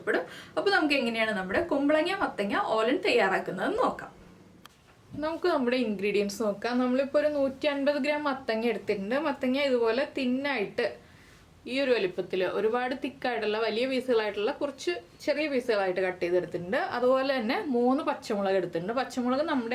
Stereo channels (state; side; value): identical; both; correlation 1.00